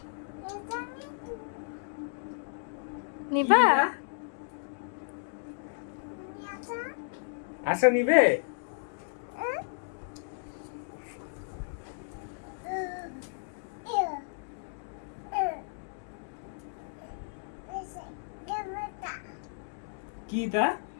নিবা? আসো নিবে? কি তা?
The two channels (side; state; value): right; silent; digital silence